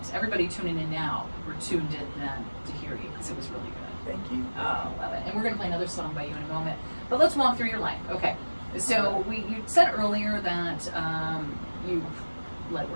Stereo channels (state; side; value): inverted; both; correlation -1.00